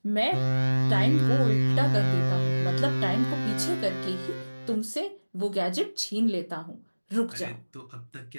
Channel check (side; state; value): both; inverted; correlation -1.00